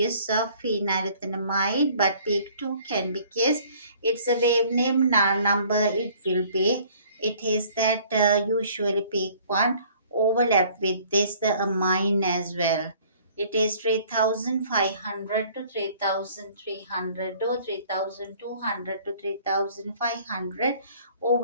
of phenylethanamide, but peak 2 can because it's a wave name number, it will be it is that usually peak 1 overlap with this the amine as well. It is 3500 to 3300 or 3200 to 3500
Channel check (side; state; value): both; inverted; correlation -0.55